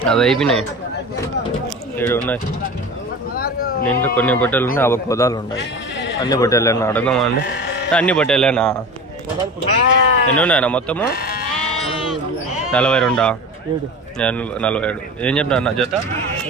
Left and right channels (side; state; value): both; normal; correlation 0.33